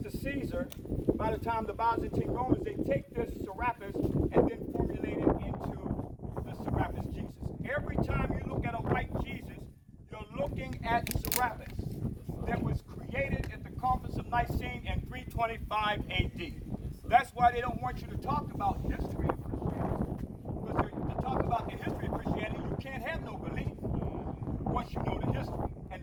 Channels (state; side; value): identical; both; correlation 1.00